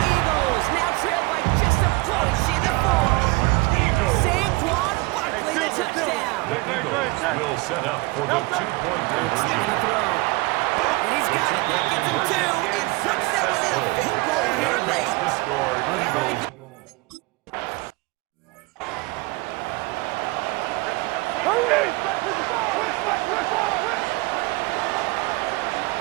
Eagles now trail by just a point in the 4th. Eagles. Saquon Barkley, the touchdown. The Eagles will set up for the 2-point It's not conversion. going to throw. And he's got it. That gets him 2. And puts them within a field goal here Makes late. the score. Eagles.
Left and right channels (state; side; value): quieter; left; 23.9 dB